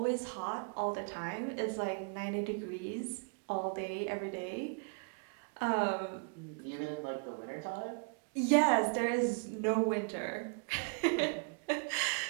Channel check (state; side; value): quieter; left; 39.7 dB